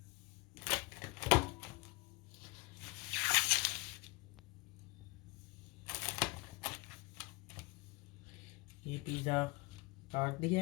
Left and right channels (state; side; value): quieter; right; 25.8 dB